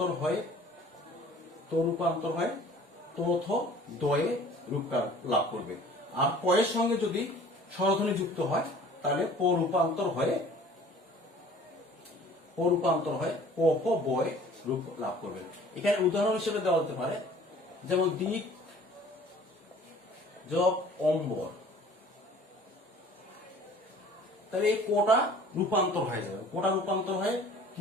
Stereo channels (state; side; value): normal; both; correlation 0.49